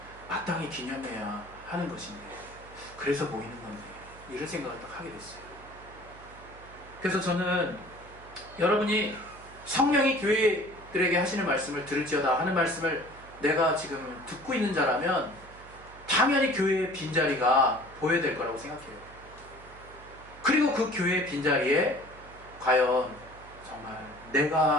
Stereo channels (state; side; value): noise; right; hum, 20 dB below the sound